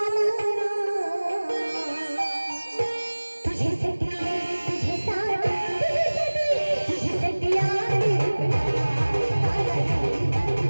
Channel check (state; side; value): inverted; both; correlation -1.00